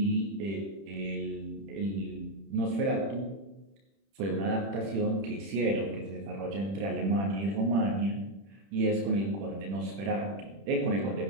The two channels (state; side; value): late; left; 31 ms